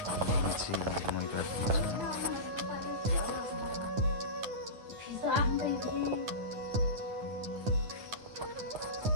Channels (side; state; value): left; late; 9.7 ms